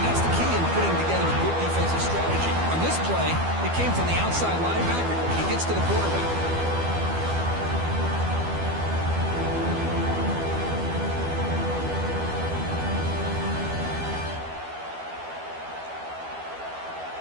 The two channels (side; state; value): left; late; 12 ms